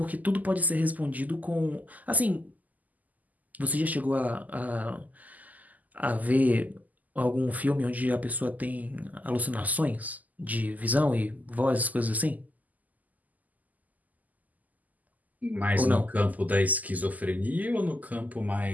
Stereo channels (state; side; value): late; left; 0.080 ms